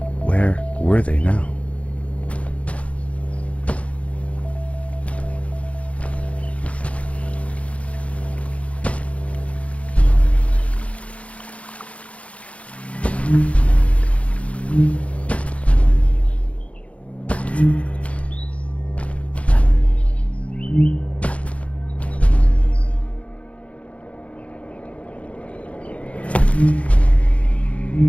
Where were they now?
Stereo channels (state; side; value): late; right; 0.064 ms